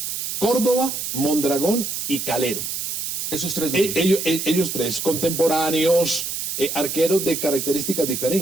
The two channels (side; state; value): right; noise; hiss, 3 dB below the sound